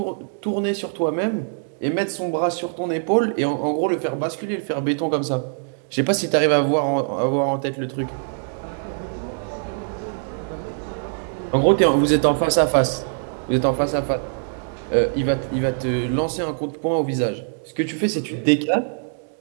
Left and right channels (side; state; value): left; silent; 64 dB below the other